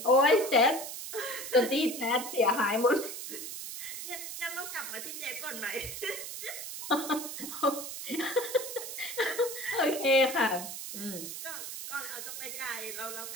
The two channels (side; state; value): right; noise; hiss, 8 dB below the sound